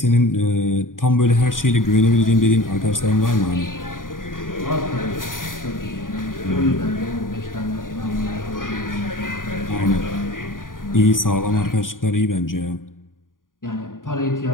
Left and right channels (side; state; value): right; late; 0.90 ms